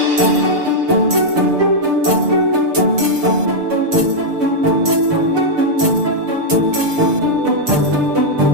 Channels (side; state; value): left; late; 6.7 ms